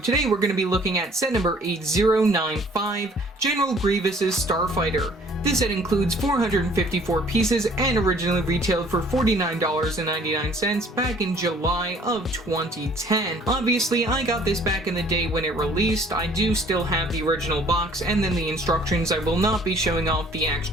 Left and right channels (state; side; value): normal; both; correlation 0.56